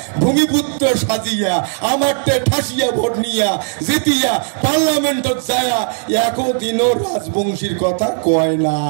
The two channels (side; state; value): left; silent; 68 dB below the other